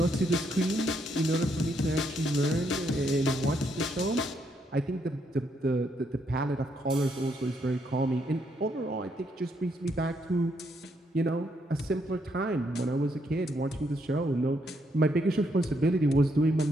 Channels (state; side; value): normal; both; correlation 0.75